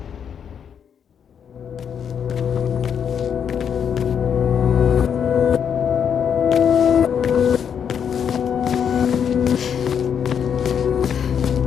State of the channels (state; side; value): quieter; right; 7.8 dB